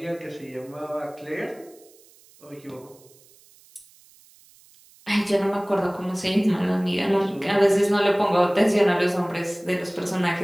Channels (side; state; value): right; noise; hiss, 27 dB below the sound